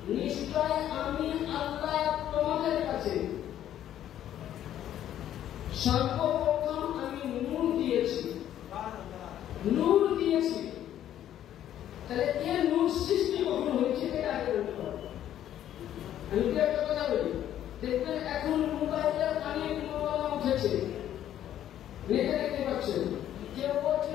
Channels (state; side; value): quieter; right; 11.4 dB